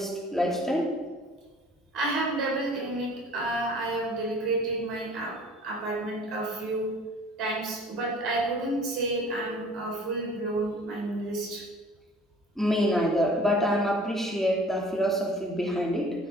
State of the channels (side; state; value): both; normal; correlation 0.49